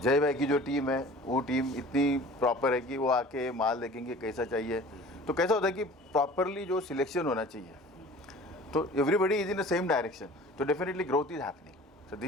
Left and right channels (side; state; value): both; normal; correlation 0.44